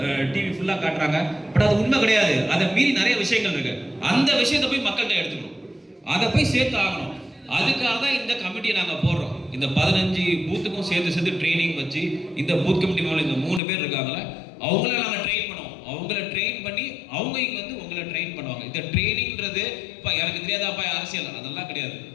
டிவி ஃபுல்லாக காட்டுறாங்க. பட் அது உண்மை கிடையாது. அதை மீறி நிறைய விஷயங்கள் இருக்கு. அந்த விஷயத்தை போய் மக்கள்கிட்ட எடுத்துக்கணும், அதை போய் சேர்த்து ஆகணும். அதுக்காக தான் இந்த கமிட்டியை நாங்கள் போடுறோம். இந்த 15 பூத்துக்கும் சேர்த்து ட்ரைனிங் வச்சு இந்த பூத் கமிட்டி மேலே இந்த 3 பேர் இருக்காங்களே அவங்கள நாங்கள் ட்ரெயின் பண்ணுவோம். அவங்கள ட்ரெயின் பண்ணி அவங்க இங்கே வந்து உங்களை ட்ரெயின் பண்ணுவாங்க. இந்த ட்ரைனிங்கிறது இப்போ எனக்கு தெரியாதாப்பா அரசியல் அதெல்லாம் கிடையாது.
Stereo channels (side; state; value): right; drops out; at 13.6 s